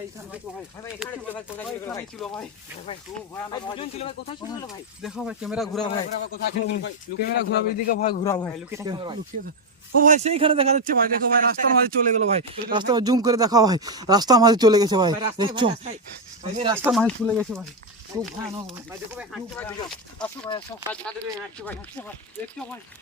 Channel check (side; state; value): both; normal; correlation 0.06